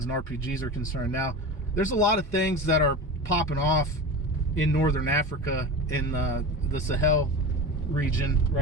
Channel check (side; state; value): both; normal; correlation 0.28